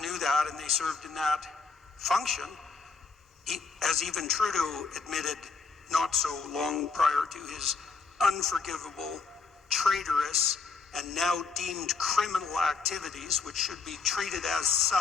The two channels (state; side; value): quieter; right; 4.7 dB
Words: that, and they served in that function, as even Trudeau admitted not so long prior to his unforgivable, traitorous, and now deemed criminal activities, which should be treated as